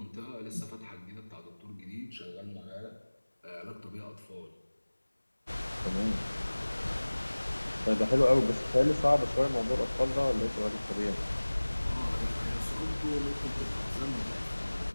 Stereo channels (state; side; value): inverted; both; correlation -1.00